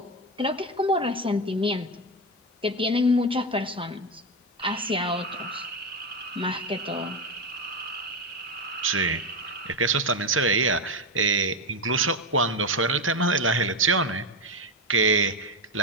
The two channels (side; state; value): both; normal; correlation 0.11